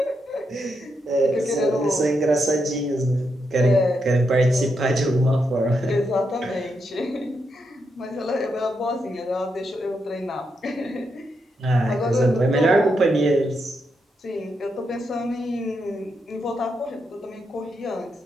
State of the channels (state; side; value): normal; both; correlation 0.82